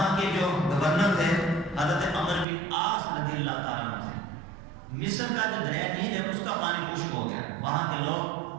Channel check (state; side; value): drops out; left; at 2.5 s